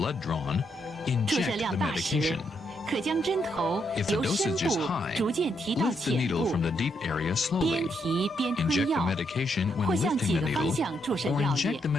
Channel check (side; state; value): both; normal; correlation 0.77